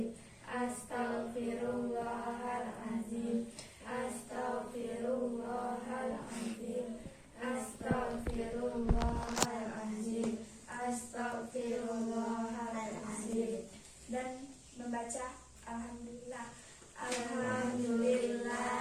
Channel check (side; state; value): both; identical; correlation 1.00